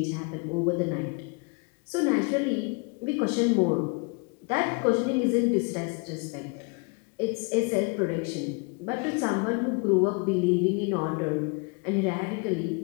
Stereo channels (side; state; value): right; quieter; 31.9 dB